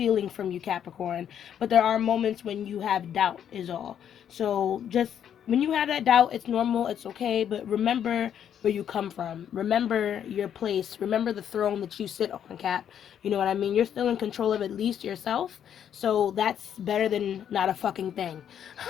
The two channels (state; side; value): quieter; right; 9.2 dB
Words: from you, Capricorn, but there are moments when you have doubt is all. So just when you have that doubt, it's normal, it's okay, but remember where you come from. Remember your place. Remember the throne that you sit on, Cap. You know what I mean? You're still in control of at least yourself. So that's better than not a fucking thing.